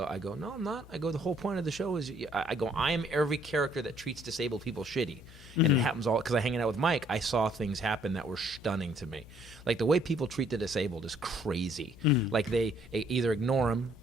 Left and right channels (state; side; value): noise; left; hum, 19 dB below the sound